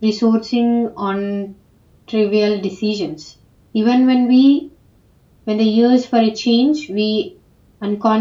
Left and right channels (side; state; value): both; identical; correlation 1.00